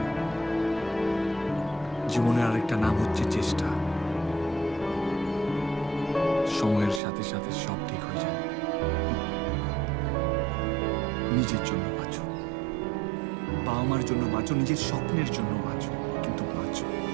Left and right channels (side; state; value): left; drops out; at 7.0 s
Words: জীবনের আরেকটা নাম হচ্ছে চেষ্টা। সময়ের সাথে সাথে সব ঠিক হয়ে যায়। নিজের জন্য বাঁচো, বাবা মার জন্য বাঁচো, নিজের স্বপ্নের জন্য বাঁচো, কিন্তু বাঁচো।